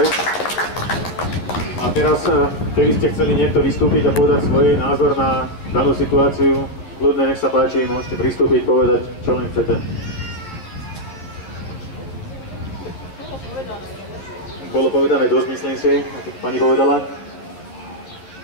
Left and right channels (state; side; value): late; right; 11 ms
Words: A teraz, keby ste chceli niekto vystúpiť a povedať svoj názor na danú situáciu, kľudne, nech sa páči, môžete pristúpiť, povedať, čo len chcete. Bolo povedané dosť, myslím si, ako pani povedala.